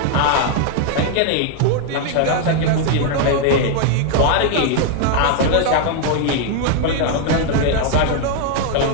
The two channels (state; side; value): different; both; correlation 0.01